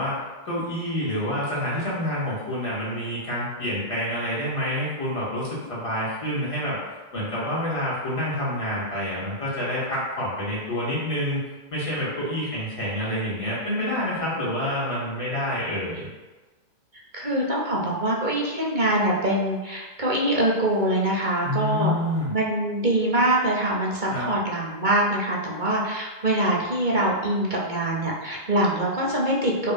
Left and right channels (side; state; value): left; late; 2.2 ms